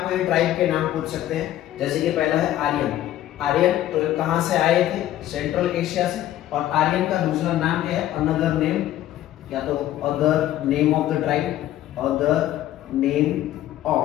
ये ट्राइब के नाम पूछ सकते हैं, जैसे कि पहला है आर्यन। आर्यन तो कहां से आए थे? सेंट्रल एशिया से। और आर्यन का दूसरा नाम क्या है? अनदर नेम, या तो other name of the tribe, other name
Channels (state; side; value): quieter; right; 13.2 dB